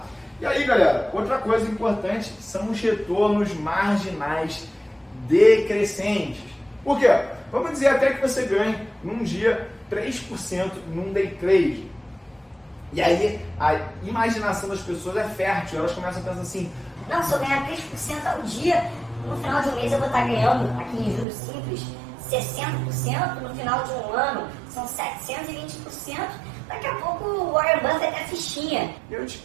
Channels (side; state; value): left; drops out; at 21.2 s